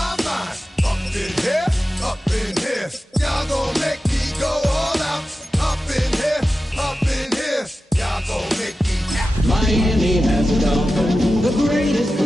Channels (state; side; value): normal; both; correlation 0.93